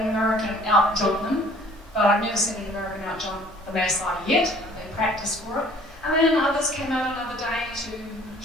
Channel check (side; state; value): both; normal; correlation 0.54